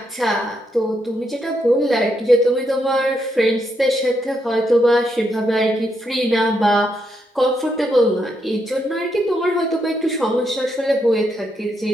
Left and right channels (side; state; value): both; normal; correlation 0.79